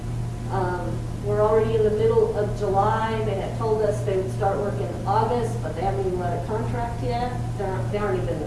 We're already in the middle of July. They had told us they would start work in August, but they haven't even let a contract yet. They aren't even.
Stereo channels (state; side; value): identical; both; correlation 1.00